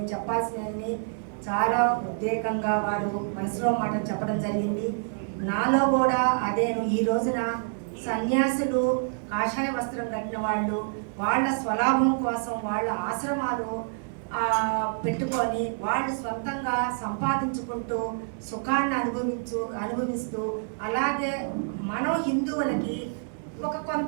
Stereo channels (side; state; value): left; silent; digital silence